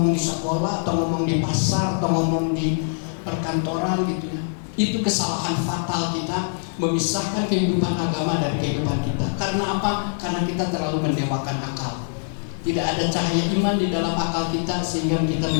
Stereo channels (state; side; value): silent; right; digital silence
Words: di sekolah, atau ngomong di pasar, atau ngomong di perkantoran gitu ya. Itu kesalahan fatal kita memisahkan kehidupan agama dari kehidupan kita. Karena apa? Karena kita terlalu mendewakan akal. Tidak ada cahaya iman di dalam akal kita sehingga kita